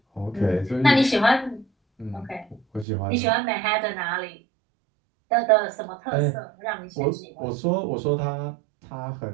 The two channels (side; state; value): left; drops out; at 2.9 s